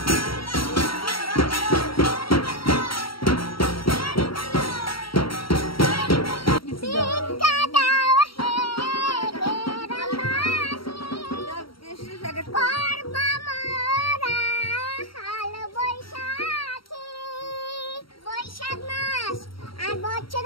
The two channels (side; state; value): right; late; 0.74 ms